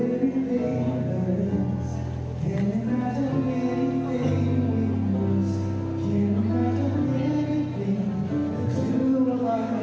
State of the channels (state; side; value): identical; both; correlation 1.00